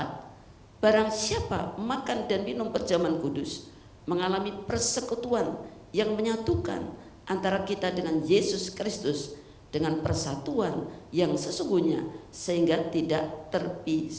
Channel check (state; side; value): identical; both; correlation 1.00